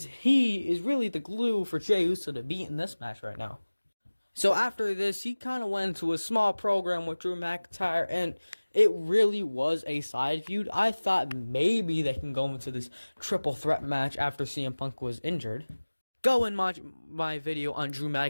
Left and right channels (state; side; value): inverted; both; correlation -1.00